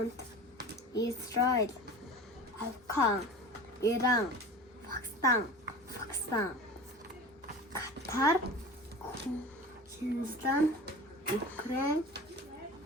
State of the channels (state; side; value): normal; both; correlation 0.35